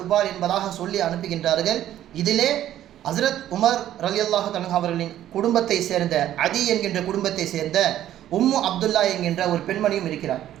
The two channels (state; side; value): quieter; left; 12.2 dB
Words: என்பதாக சொல்லி அனுப்புகின்றார்கள். இதிலே ஹஸ்ரத் உமர் ரலியல்லாஹு தஆலா அவர்களின் குடும்பத்தை சேர்ந்த அதி என்கின்ற குடும்பத்தை சேர்ந்த உம்மு அப்துல்லா என்கின்ற ஒரு பெண்மணியும் இருக்கிறார்.